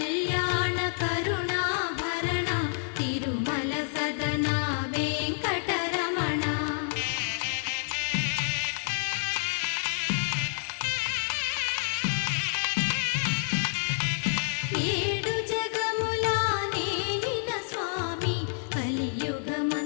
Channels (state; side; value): silent; right; 58 dB below the other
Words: కరుణాభరణ తిరుమల సదన వెంకటరమణ ఏడు జగముల నేలిన స్వామి